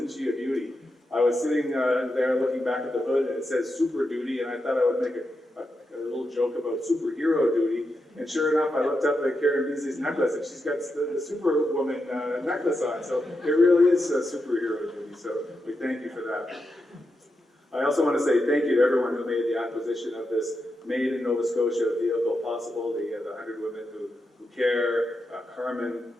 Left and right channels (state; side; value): normal; both; correlation 0.86